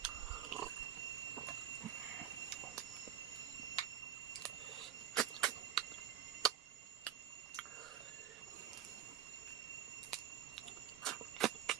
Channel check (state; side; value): quieter; left; 10.2 dB